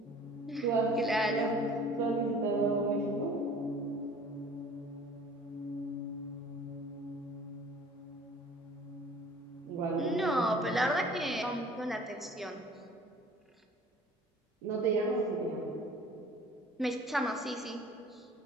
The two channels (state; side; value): normal; both; correlation 0.48